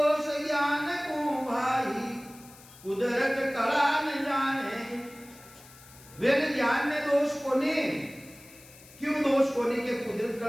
ज्ञान को भाई कुदरत कला न जाने, वेन ज्ञान ने दोष को ने, क्यों दोष को ने के कुदरत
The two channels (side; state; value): left; noise; hiss, 22 dB below the sound